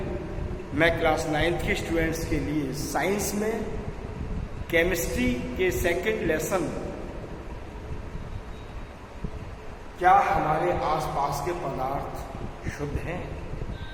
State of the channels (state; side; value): identical; both; correlation 1.00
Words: मैं क्लास 9th के स्टूडेंट्स के लिए साइंस में केमिस्ट्री के सेकंड लेसन क्या हमारे आसपास के पदार्थ शुद्ध हैं,